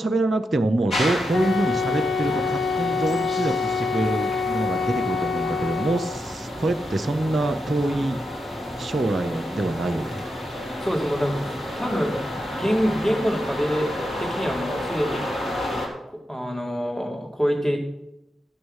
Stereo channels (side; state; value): both; normal; correlation 0.86